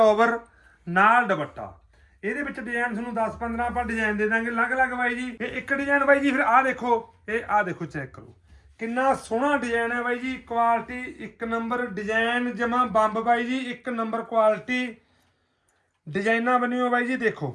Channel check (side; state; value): both; identical; correlation 1.00